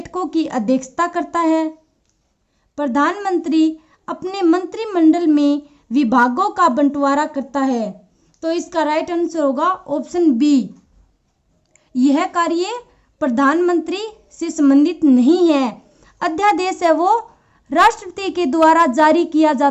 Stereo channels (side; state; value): both; identical; correlation 1.00